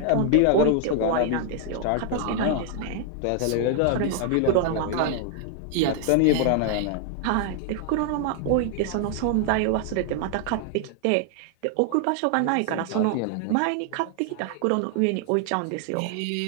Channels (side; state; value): both; different; correlation 0.00